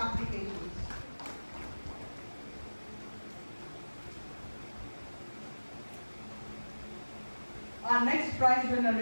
Our next prize winner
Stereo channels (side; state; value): both; inverted; correlation -1.00